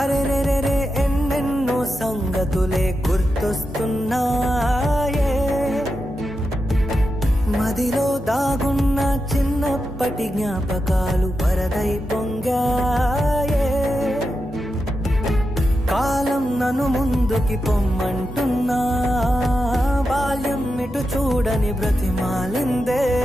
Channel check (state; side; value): normal; both; correlation 0.88